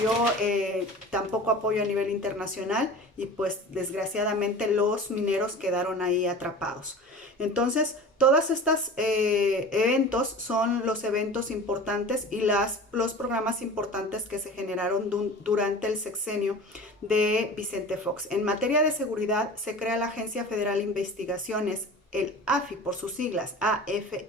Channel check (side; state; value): both; normal; correlation 0.37